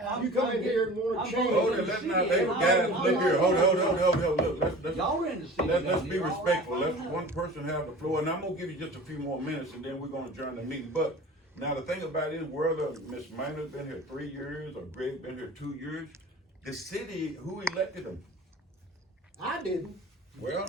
You come in here and wanna I'm change. from Hold the it, let's city, not, and let, I'm- guys, I'm look not- here, hold it, let's. Y'all in the city Let's down be here. respectful, let's one person have the floor, and I'm gonna give you just a few more minutes, and then we're gonna adjourn the meeting. But now the thing about it is, whether Ms. Minor's been here 3 years, or Greg been here 2 years, the city, who elected them? I didn't. Well,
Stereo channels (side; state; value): both; normal; correlation 0.40